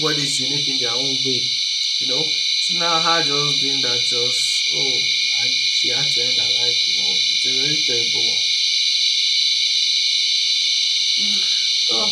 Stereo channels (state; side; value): identical; both; correlation 1.00